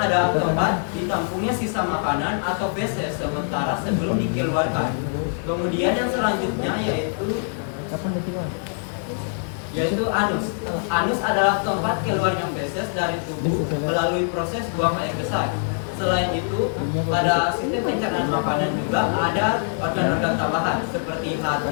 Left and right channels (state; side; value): silent; right; 63 dB below the other